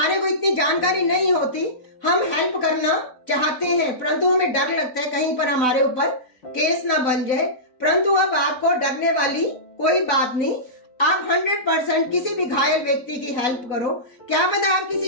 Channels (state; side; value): late; right; 4.0 ms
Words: को इतनी जानकारी नहीं होती, हम हेल्प करना चाहते हैं, परंतु हमें डर लगता है कहीं पर हमारे ऊपर केस ना बन जाए। परंतु अब आपको डरने वाली कोई बात नहीं। आप 100% किसी भी घायल व्यक्ति की हेल्प करो। क्या पता आप